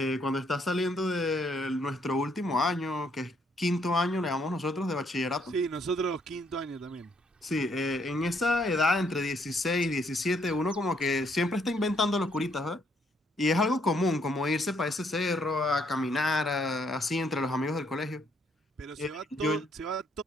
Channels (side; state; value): both; normal; correlation 0.70